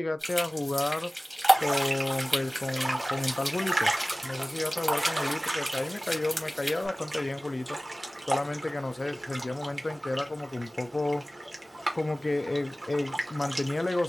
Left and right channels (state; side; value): normal; both; correlation 0.98